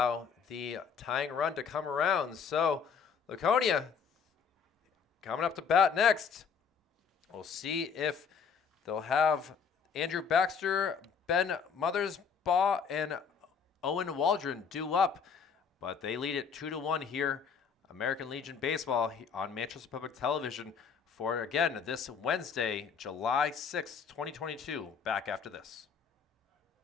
the tying run to come around. So Laconia coming up to bat next. We'll see if they'll have Andrew Baxter, Ben Mothersbaugh, and Owen Waldron due up. But they lead it 2-1 here. American Legion Baseball on Manchester Public Television for, again, this Wednesday, July 6th, 2022. Back after this.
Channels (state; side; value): quieter; right; 6.3 dB